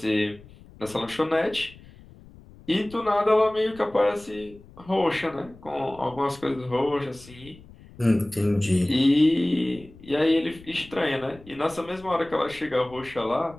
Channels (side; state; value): left; noise; rumble, 22 dB below the sound